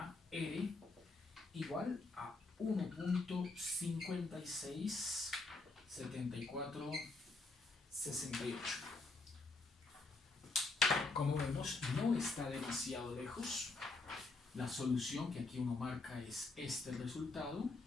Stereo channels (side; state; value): right; quieter; 3.4 dB